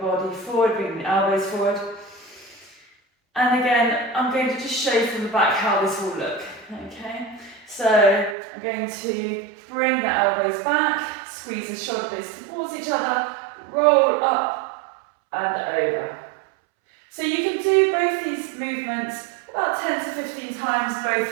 forward, bringing the elbows forward. And again, I'm going to just show you from the back how this will look, okay? So I'm going to bring the elbows back, squeeze the shoulder blades towards each other, roll up and over. So you can do both these movements about 10 to 15 times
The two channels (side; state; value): left; drops out; at 8.3 s